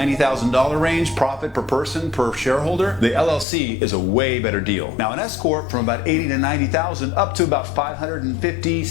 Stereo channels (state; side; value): drops out; right; at 3.5 s